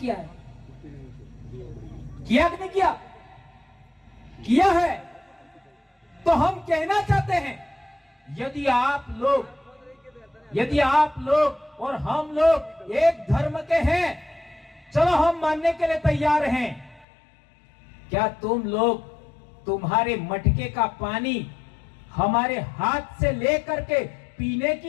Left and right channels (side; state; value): right; drops out; at 17.1 s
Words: है। किया कि नहीं किया? किया है। तो हम कहना चाहते हैं यदि आप लोग और हम लोग एक धर्म के हैं, चलो हम मानने के लिए तैयार हैं। क्या तुम लोग तुम्हारे मटके का पानी हमारे हाथ से लेकर के पीने की